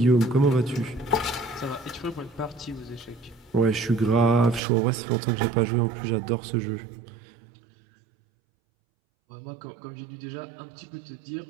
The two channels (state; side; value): drops out; left; at 4.6 s